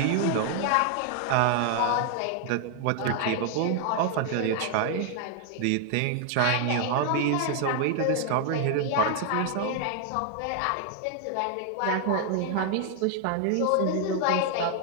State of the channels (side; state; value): both; different; correlation 0.00